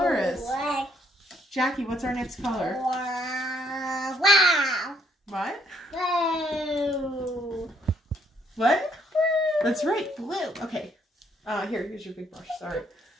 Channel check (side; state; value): both; normal; correlation 0.69